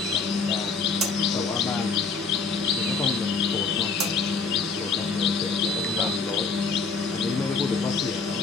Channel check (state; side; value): quieter; right; 4.6 dB